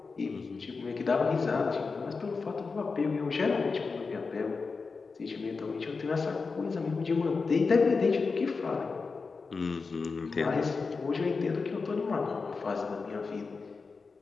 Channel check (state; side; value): quieter; right; 4.5 dB